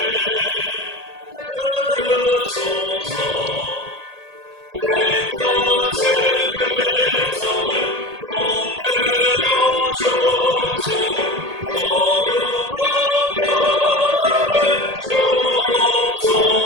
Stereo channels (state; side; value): late; left; 1.8 ms